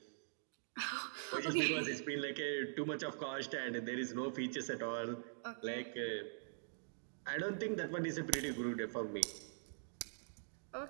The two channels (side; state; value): left; silent; digital silence